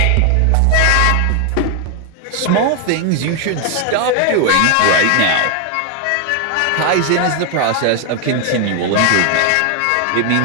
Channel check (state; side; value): different; both; correlation 0.00